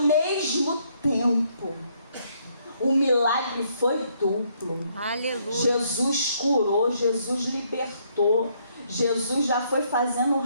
tempo. O milagre foi duplo. Aleluia. Jesus curou, Jesus libertou. Jesus já foi fazendo um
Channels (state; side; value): inverted; both; correlation -0.70